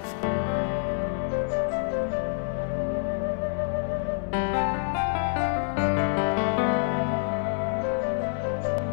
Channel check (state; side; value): silent; right; digital silence